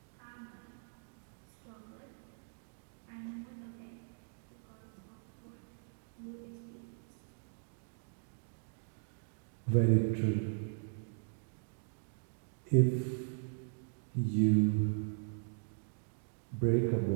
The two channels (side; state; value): left; silent; digital silence